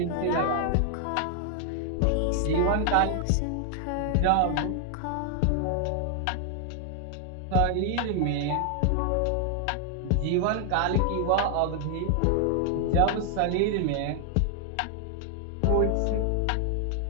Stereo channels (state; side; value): different; both; correlation 0.00